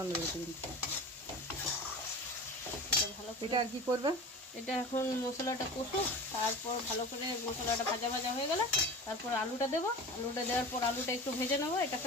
বেরিয়েছে কিন্তু। এটা ভালো করে, এটা আর কি করবে? এটা এখন মশলাটা কষুক, তারপর ভালো করে মশলাটা ভাজা ভাজা হয়ে গেলে তারপর আলুটা দেবো। আলুটা দেওয়ার পর আলুটা একটু ভেজে নেবো এটার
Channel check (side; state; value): both; normal; correlation 0.35